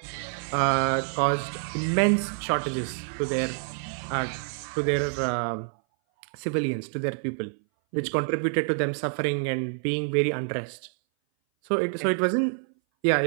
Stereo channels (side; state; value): left; silent; 58 dB below the other